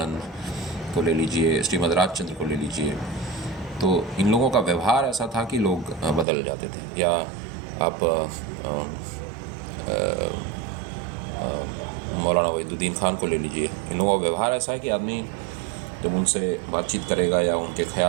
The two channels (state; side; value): drops out; left; at 6.2 s